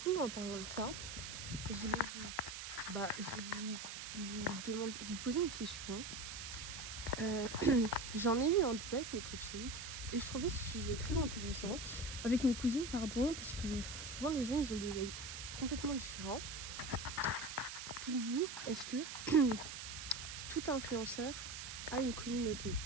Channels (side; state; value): right; noise; hiss, 7 dB below the sound